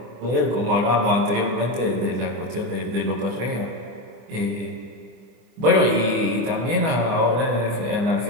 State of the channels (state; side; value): late; left; 24 ms